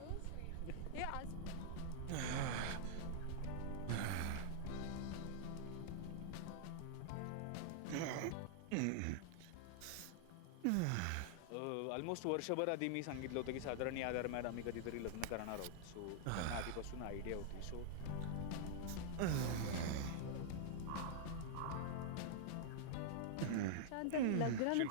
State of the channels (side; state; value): both; different; correlation -0.01